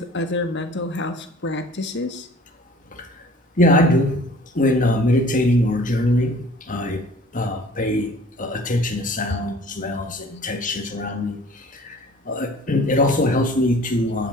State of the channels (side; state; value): both; normal; correlation 0.49